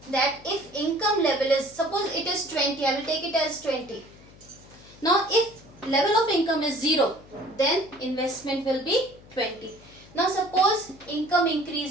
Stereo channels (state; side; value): noise; left; hum, 23 dB below the sound